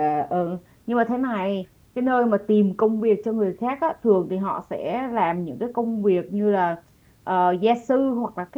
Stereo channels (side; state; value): both; identical; correlation 1.00